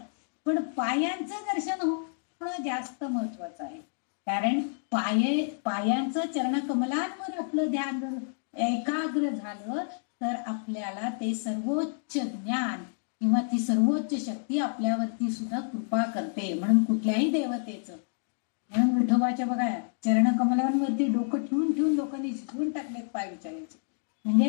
पण पायांचं दर्शन होणं जास्त महत्वाचं आहे. कारण पायांचं चरणकमलांवर आपलं ध्यान जर एकाग्र झालं तर आपल्याला ते सर्वोच्च ज्ञान किंवा ती सर्वोच्च शक्ती आपल्यावरती सुद्धा कृपा करते. म्हणून कुठल्याही देवतेचं, म्हणून विठोबाच्या बघा चरणकमलांवरती डोकं ठेवून लोकांनी झिजवून टाकलेत पाय विचारायचे.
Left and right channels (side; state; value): right; silent; digital silence